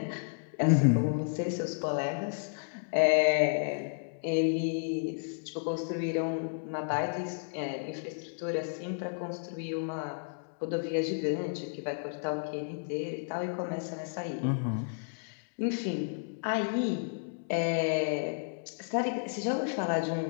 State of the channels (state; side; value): silent; right; digital silence